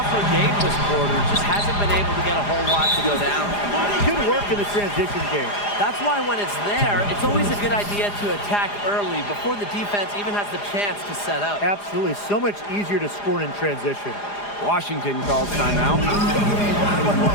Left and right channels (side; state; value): right; late; 4.9 ms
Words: her game this quarter. Just hasn't been able to get a whole lot to go down. Good work in the transition game. That's why when it's there, it's always a good idea to attack early before the defense even has the chance to set up. Absolutely. So much easier to score in transition. Washington calls timeout.